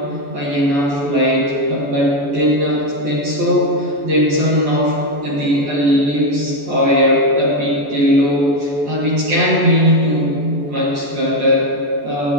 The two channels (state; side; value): late; left; 14 ms